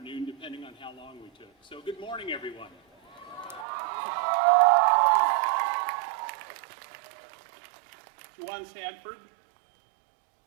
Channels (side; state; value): left; drops out; at 3.7 s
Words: depending on how long we took. So good morning, everyone. Juwan Sanford